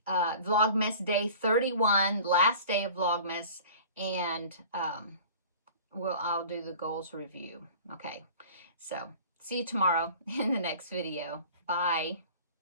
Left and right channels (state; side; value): inverted; both; correlation -0.43